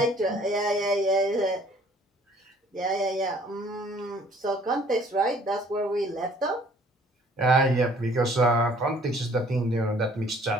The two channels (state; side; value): normal; both; correlation 0.57